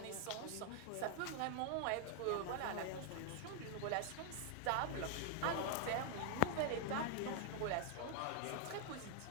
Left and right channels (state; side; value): different; both; correlation 0.00